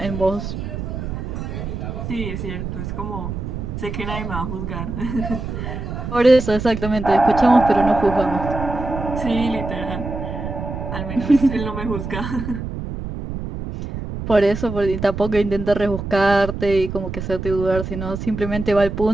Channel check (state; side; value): noise; right; rumble, 6 dB below the sound